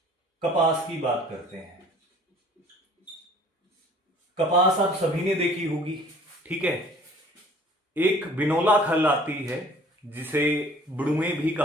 कपास की बात करते हैं। कपास आप सभी ने देखी होगी, ठीक है। एक बिनोला खल आती है जिसे बड़ुए भी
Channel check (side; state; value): both; normal; correlation 0.51